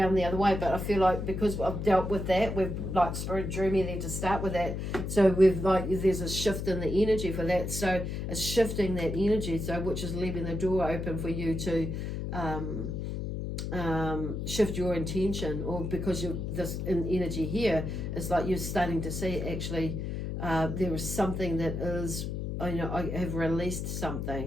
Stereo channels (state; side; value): noise; left; hum, 4 dB below the sound